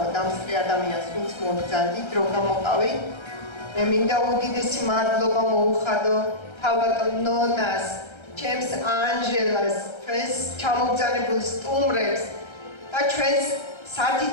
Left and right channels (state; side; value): late; right; 1.3 ms